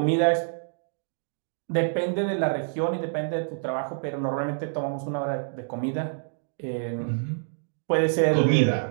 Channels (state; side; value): silent; left; digital silence